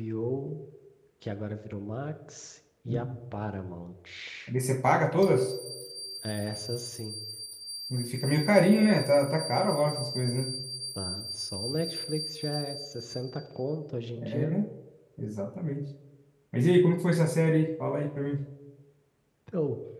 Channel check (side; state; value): both; identical; correlation 1.00